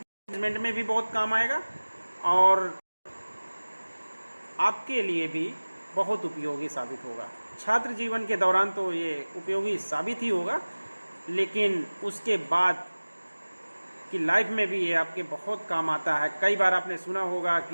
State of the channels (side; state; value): both; inverted; correlation -1.00